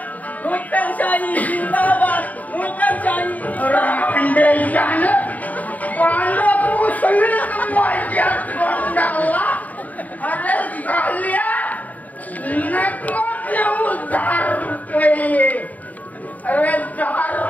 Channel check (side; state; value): right; late; 0.075 ms